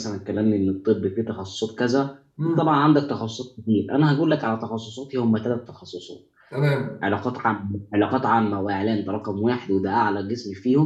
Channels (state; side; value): identical; both; correlation 1.00